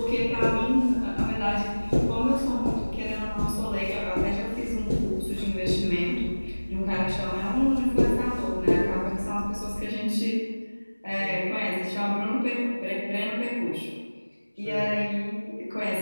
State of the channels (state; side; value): inverted; both; correlation -1.00